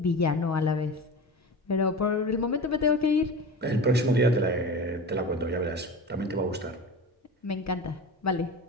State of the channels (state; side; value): normal; both; correlation 0.30